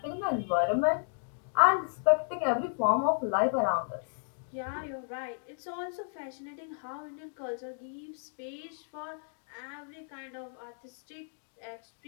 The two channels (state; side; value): silent; right; digital silence